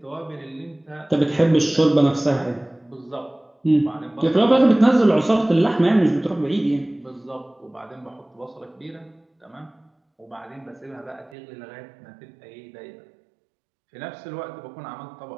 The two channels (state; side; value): drops out; left; at 11.4 s